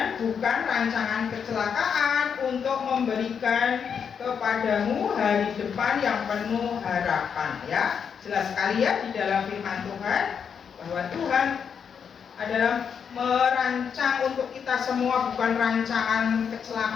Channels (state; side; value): quieter; right; 7.0 dB